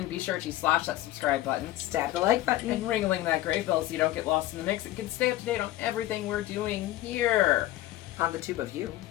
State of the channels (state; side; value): quieter; right; 15.2 dB